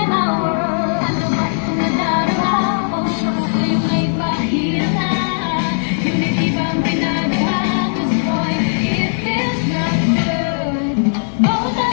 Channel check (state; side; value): silent; right; 68 dB below the other